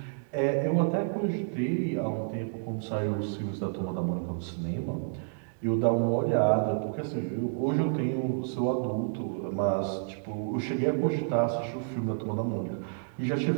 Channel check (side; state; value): left; silent; digital silence